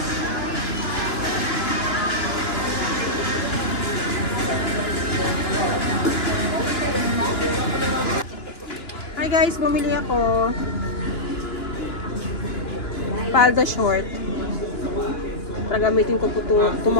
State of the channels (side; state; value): right; late; 2.9 ms